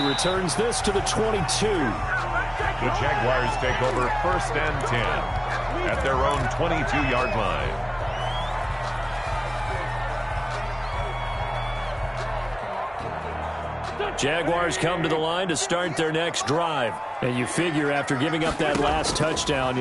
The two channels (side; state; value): both; identical; correlation 1.00